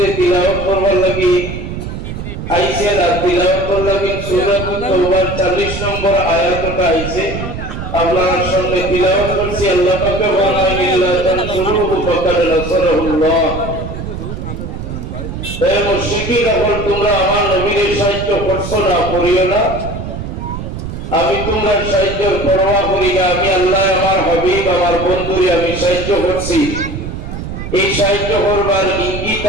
তিলাওয়াত করবার লাগি আইছে না তিলাওয়াত করবার লাগি সূরা তাওবার 40 নম্বর আয়াতটা আইছে আপনার সামনে তিলাওয়াত করছি আল্লাহ পাক বলেন ইল্লা তানসুরুহু ফাকাদ নাসারাহুল্লাহ। হে মুশরিকিন এখন তোমরা আমার নবীর সাহায্য করছো না করিও না আমি তোমার সাহায্যের পরোয়া করি না আমি আল্লাহ আমার হাবিব আমার বন্ধুরে আমি সাহায্য করছি এই সাহায্য করবার ইঙ্গিত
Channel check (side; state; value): right; noise; rumble, 7 dB below the sound